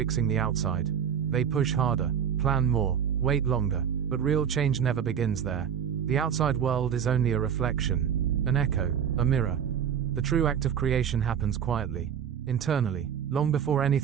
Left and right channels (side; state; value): left; quieter; 8.3 dB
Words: the outside. They push harder, plan more, wait longer, but real change never begins there. The outside world is only a reflection, an echo, a mirror. The true act of creation happens quietly, internally, long before